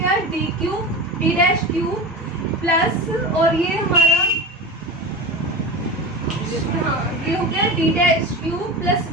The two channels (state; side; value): normal; both; correlation 0.26